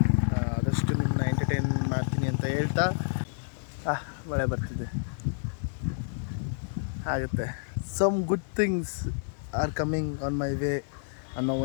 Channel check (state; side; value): silent; right; digital silence